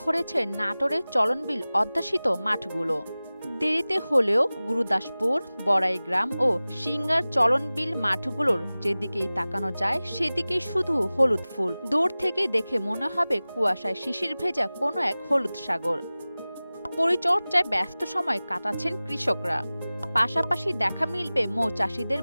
ভরেছে নাটোরের চলনবিল অধ্যাসিত মাঠগুলো। দেরিতে হলেও গুরুদাসপুর, বড়াইগ্রাম ও সিঙ্গার চলনবিল মাঠগুলোর যেদিকেই তাকানো যায় সেদিকেই শুধু হলুদ ফুল। দূর থেকে দেখে মনে হবে কুয়াশায় শিশির ভেজা কোনো এক হলুদ সাগর। পরিচর্যায় ব্যস্ত সময় কাটাচ্ছেন কৃষকরা। পাশাপাশি দেখা মিলবে মৌচাষীদের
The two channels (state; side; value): inverted; both; correlation -0.98